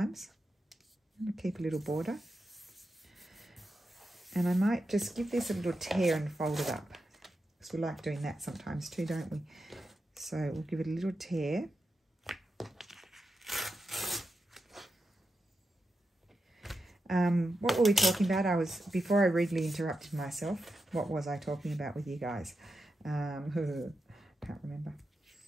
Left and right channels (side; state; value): both; normal; correlation 0.89